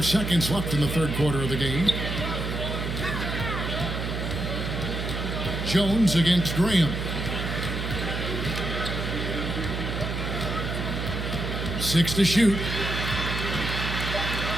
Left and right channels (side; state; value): right; noise; hum, 3 dB below the sound